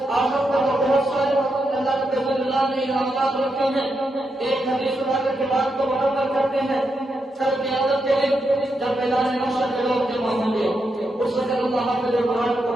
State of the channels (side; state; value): both; normal; correlation 0.84